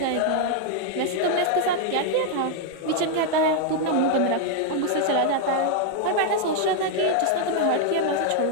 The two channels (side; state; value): both; different; correlation 0.00